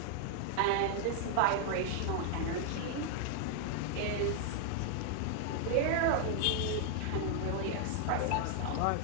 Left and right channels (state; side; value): different; both; correlation 0.00